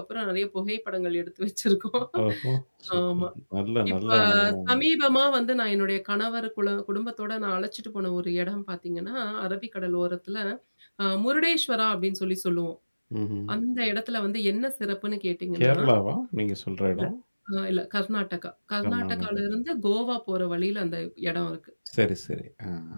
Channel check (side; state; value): both; inverted; correlation -1.00